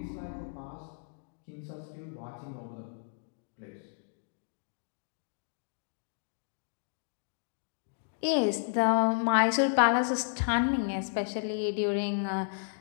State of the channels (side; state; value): right; silent; digital silence